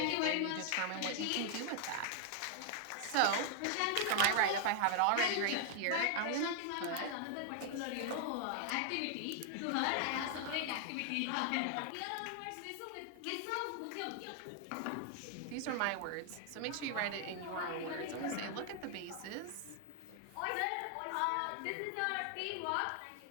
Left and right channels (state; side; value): different; both; correlation 0.00